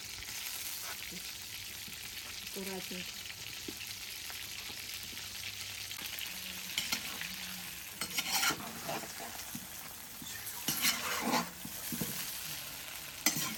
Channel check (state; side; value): identical; both; correlation 1.00